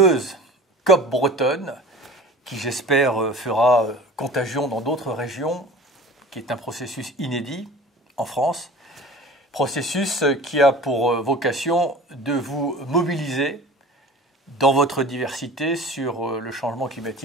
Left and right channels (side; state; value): both; normal; correlation 0.39